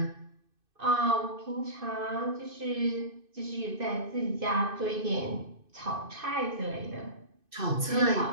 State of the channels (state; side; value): late; left; 2.6 ms